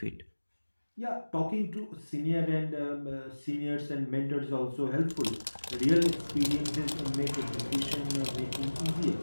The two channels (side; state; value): both; inverted; correlation -1.00